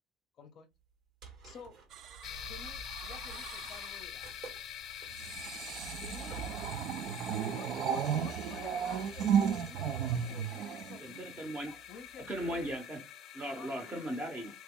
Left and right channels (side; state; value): left; quieter; 4.6 dB